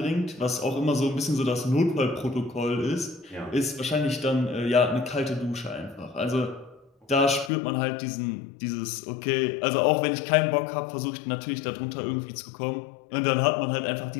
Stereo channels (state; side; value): drops out; right; at 7.5 s